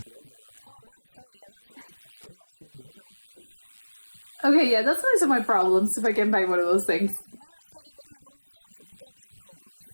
Okay, yeah, that's one of my problems if I can buy one of those things.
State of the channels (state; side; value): inverted; both; correlation -1.00